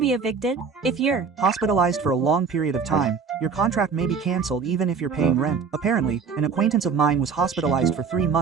evicted? If you're Hospitalized for a long period of time, your contract may be cancelled even if you're paying rent. Apparently, an acquaintance of mine was hospitalized for 3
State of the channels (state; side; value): quieter; left; 5.6 dB